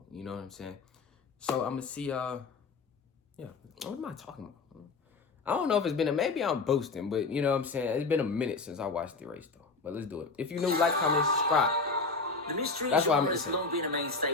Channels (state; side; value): quieter; right; 4.1 dB